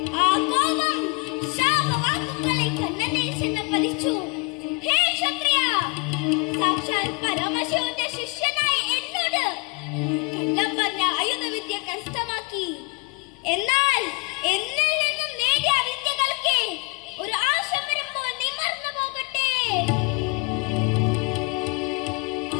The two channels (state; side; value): quieter; right; 29.2 dB